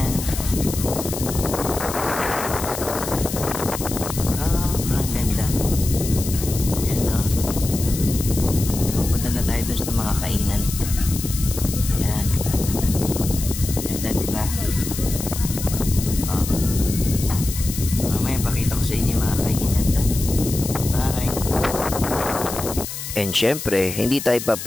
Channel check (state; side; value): noise; left; hiss, 8 dB below the sound